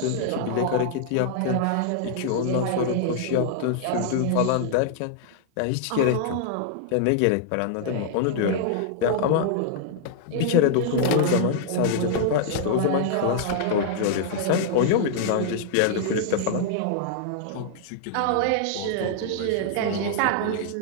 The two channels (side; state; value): both; different; correlation 0.00